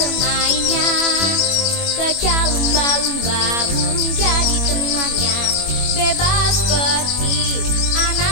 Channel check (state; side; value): late; right; 21 ms